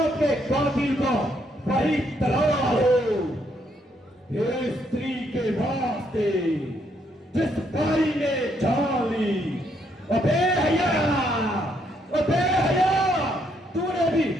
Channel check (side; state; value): both; normal; correlation 0.73